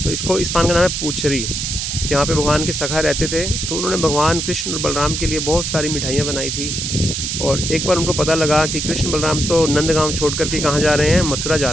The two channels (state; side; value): noise; right; hiss, 3 dB below the sound